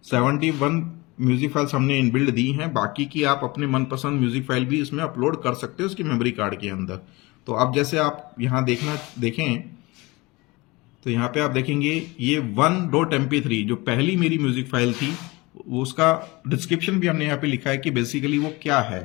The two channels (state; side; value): quieter; right; 23.3 dB